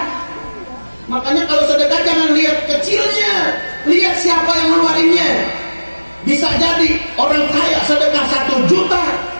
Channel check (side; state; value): both; inverted; correlation -1.00